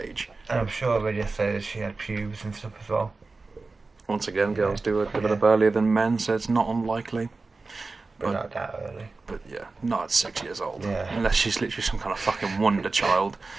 And I'm sure I read yesterday that she had pubes and stuff as well. Once again, girls do it develop Yeah. earlier than men, so it's not unlikely. But not that early. But yeah, not at 6 years old. Yeah. Unless she's literally some kind of fucking wonder child.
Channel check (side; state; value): left; quieter; 3.8 dB